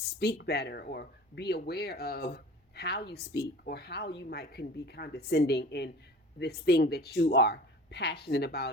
better, or be aware of how you speak, or how you might can be condescending in this thing that you are passionate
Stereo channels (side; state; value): both; normal; correlation 0.41